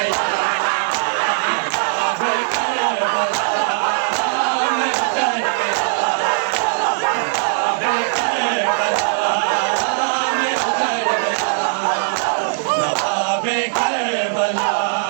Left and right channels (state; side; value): silent; left; digital silence